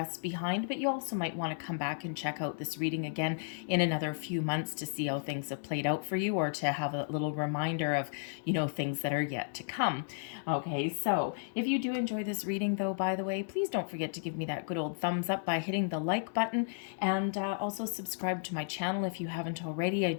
behind, but you also might want to come back and check out this reading again in another few months to see how things have played out for you, or to have a little reminder of, things that are yet to come. Okay, so if you do enjoy this reading, though, by the way, please don't forget to give me that good old thumbs up by hitting the like button, and also subscribe to my channel if you haven't already. I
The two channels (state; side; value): silent; right; digital silence